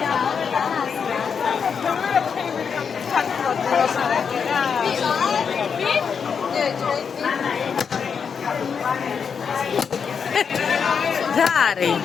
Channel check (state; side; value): quieter; right; 6.5 dB